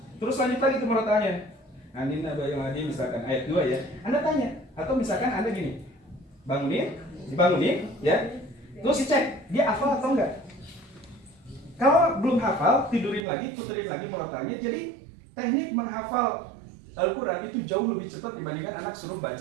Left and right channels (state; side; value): drops out; left; at 13.2 s